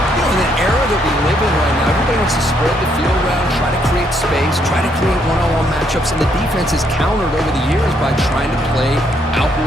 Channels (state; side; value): normal; both; correlation 0.72